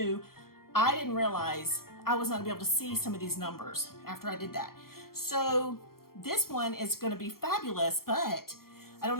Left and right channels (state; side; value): late; right; 0.93 ms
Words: I didn't realize I was not gonna be able to see some of these numbers after I did that. So this one is going to be fabulous, but I don't